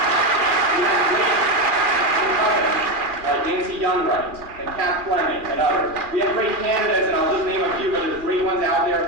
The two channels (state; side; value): late; left; 2.4 ms